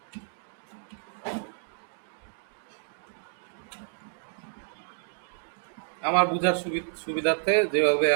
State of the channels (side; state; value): left; silent; digital silence